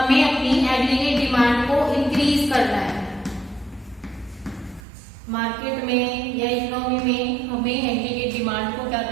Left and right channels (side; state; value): left; drops out; at 4.8 s